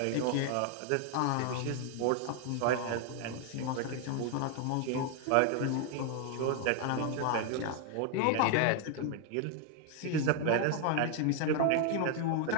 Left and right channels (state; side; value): different; both; correlation 0.00